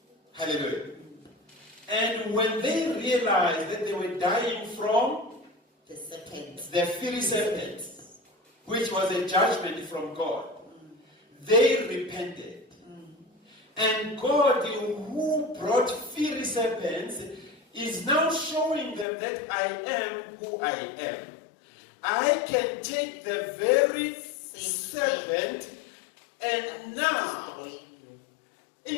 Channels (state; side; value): drops out; right; at 19.1 s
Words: Hallelujah. And when they realized that they were dying from The serpent. the fiery serpent, which was a judgment from God, they repented. And God, who brought fiery serpents, is now showing them that I am who I am. I can take the very serpent and now,